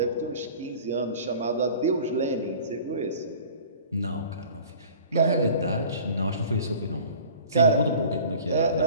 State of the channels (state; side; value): inverted; both; correlation -0.45